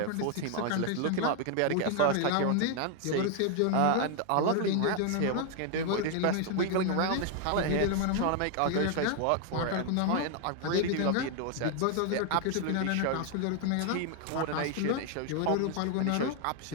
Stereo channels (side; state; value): both; different; correlation 0.00